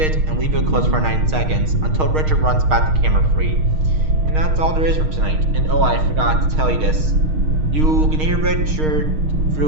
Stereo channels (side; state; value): left; late; 6.5 ms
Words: and leave it closed for 9 seconds until Richard runs back to camera 3. And that's all there is for tonight. And oh, I forgot to tell you this. You can hear Richard